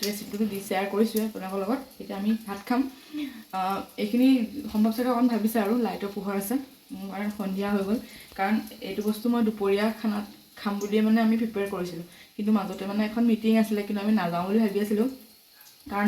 ৰেচিপিটো শ্বেয়াৰ কৰিছোঁৱে আপোনালোকৰ লগত। এতিয়া আমি ভাত খাম। এইখিনি সম্ভৱ চাগে অকণ ভাবিছে আৰু লাইটৰ পোহৰ আছে আৰু সন্ধিয়া হৈ গ'ল, কাৰণ এইটো বস্তু মই দুপৰীয়া খানাত খাম বুলিয়ে মানে আমি প্ৰিপেয়াৰ কৰিছিলোঁ, কিন্তু মাজতে মানে এখন মিটিং আছিলে, কিন্তু আমি নাযাওঁ বুলি ভাবি আছিলোঁ, কাৰণ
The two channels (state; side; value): identical; both; correlation 1.00